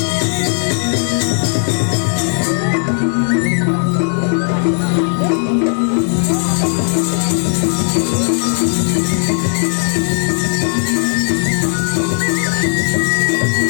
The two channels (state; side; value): silent; right; digital silence